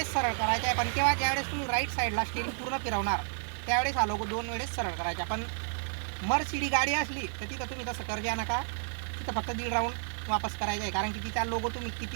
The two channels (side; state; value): left; silent; digital silence